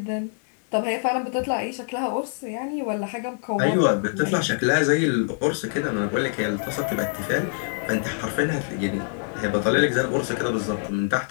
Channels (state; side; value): silent; right; digital silence